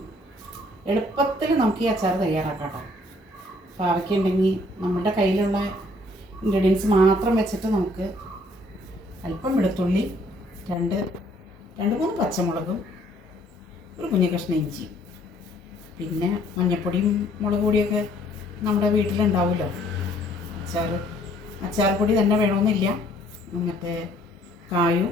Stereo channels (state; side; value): normal; both; correlation 0.62